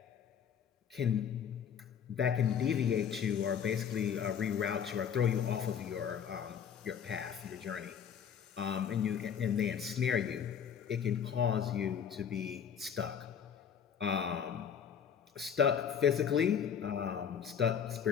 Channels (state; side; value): quieter; right; 7.9 dB